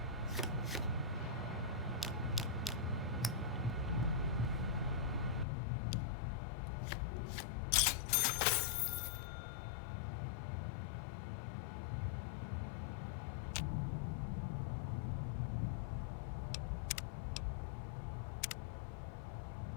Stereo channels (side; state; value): right; drops out; at 5.5 s